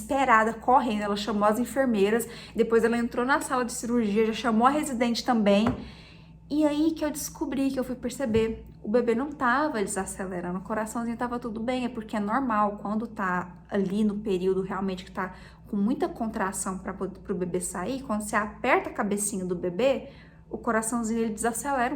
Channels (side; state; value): both; identical; correlation 1.00